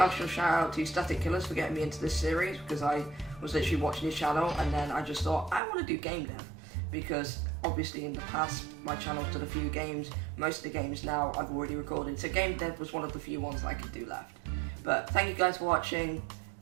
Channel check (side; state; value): left; drops out; at 5.6 s